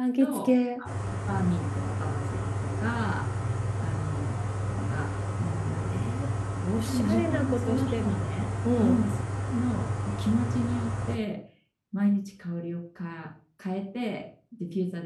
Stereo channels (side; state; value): both; identical; correlation 1.00